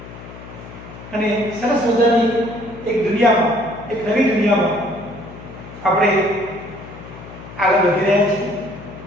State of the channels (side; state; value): left; noise; hum, 15 dB below the sound